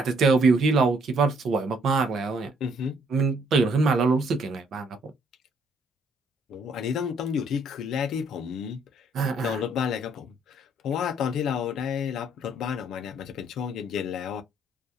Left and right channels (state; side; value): normal; both; correlation 0.67